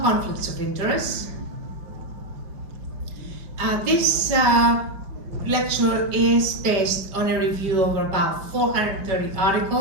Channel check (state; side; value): late; left; 5.1 ms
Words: conflicts of interest. This lecture is based on a review of about 430